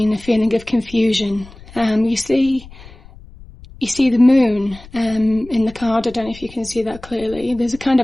a feeling of confusion. You see the moon in the card. I don't know if you can see that clearly. There's a kind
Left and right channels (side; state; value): left; noise; rumble, 20 dB below the sound